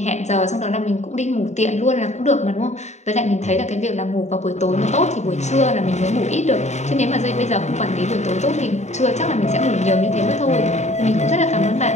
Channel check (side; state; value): right; late; 0.33 ms